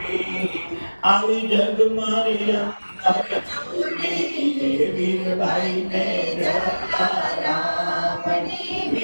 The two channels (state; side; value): inverted; both; correlation -1.00